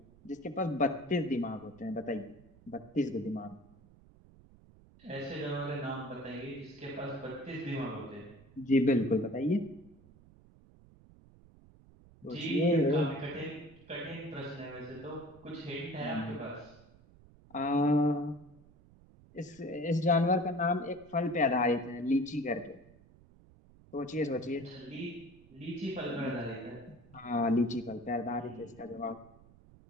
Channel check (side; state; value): right; noise; rumble, 24 dB below the sound